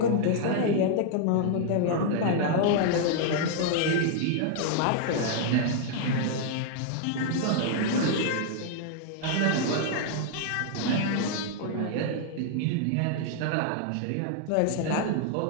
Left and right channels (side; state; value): both; different; correlation -0.01